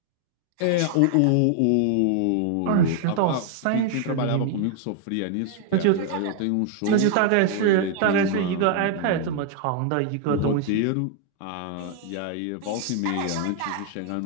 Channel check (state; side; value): different; both; correlation 0.00